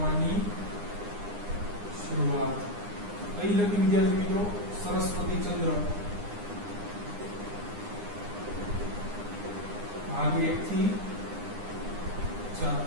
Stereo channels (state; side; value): late; left; 9.8 ms